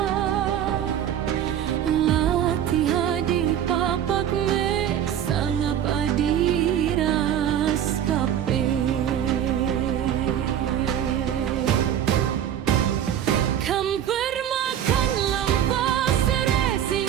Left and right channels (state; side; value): quieter; left; 10.0 dB